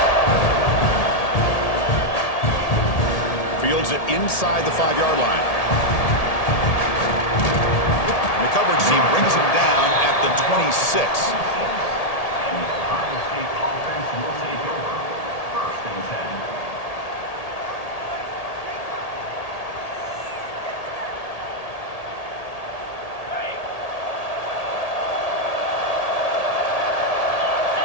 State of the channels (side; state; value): right; late; 1.8 ms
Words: Fields it inside the 5-yard line. And the coverage team brings him down at the 26.